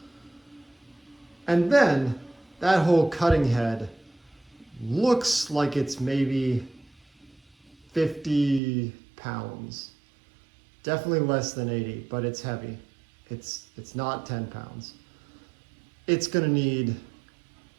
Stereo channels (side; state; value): left; drops out; at 8.6 s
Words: And then that whole cutting head looks like it's maybe 50 pounds. Definitely less than 80, but it's heavy. It's not 10 pounds. It's gonna need,